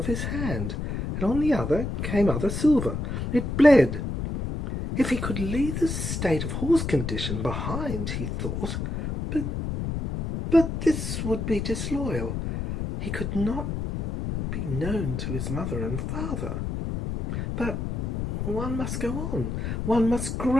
his hand, and on the other came other silver. It bled. If he could leave the state of horse condition behind, he thought, but this would be disloyal. He could not be known to his mother and father. But one must go on. One must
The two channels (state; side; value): noise; left; rumble, 3 dB below the sound